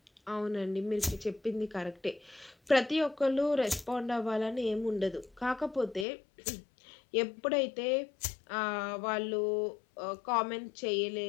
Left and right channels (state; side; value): drops out; right; at 6.1 s